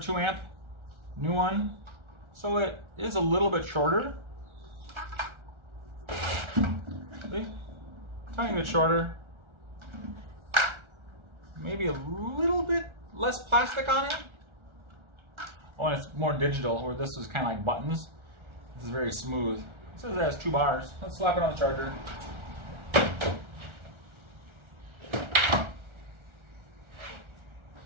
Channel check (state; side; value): late; left; 1.4 ms